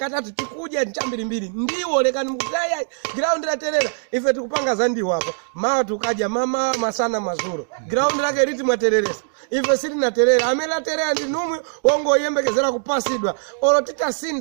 tikudya ndi chambirimbiri ndiwo lekani mukutaya ground laterera ife tikupanga za ndiwo apa mawa tukadya mama masana mazuro ground lake liti mwatereresa ife sili naterera amene aterera ndi numwe wongoyembekezera kupasidwa olo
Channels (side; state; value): left; silent; digital silence